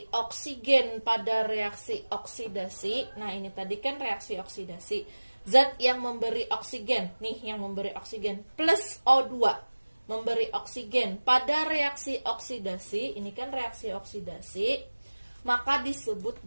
oksigen pada reaksi oksidasi. Nah, ini tadi kan reaksi oksidasi. Zat yang memberi oksigen, nih yang memberi oksigen plus O2 memberi oksigen pada reaksi oksidasi. Ini kan reaksi oksidasi, maka disebut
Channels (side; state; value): both; inverted; correlation -1.00